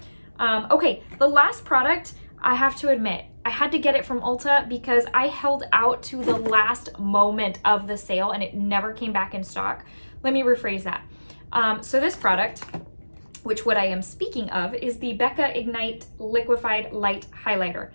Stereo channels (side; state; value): both; inverted; correlation -1.00